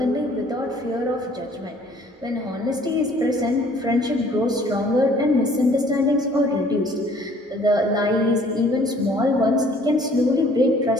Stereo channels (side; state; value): both; normal; correlation 0.56